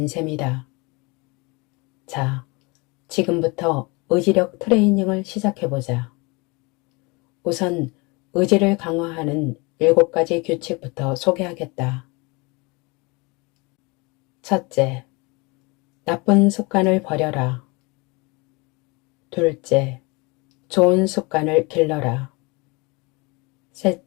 셈이다. 자, 지금부터 의지력 트레이닝을 시작해보자. 우선 의지를 강화하는 7가지 규칙부터 소개하겠다. 첫째, 나쁜 습관을 버려라. 둘째, 좋은 습관을 길러라.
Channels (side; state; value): right; quieter; 27.2 dB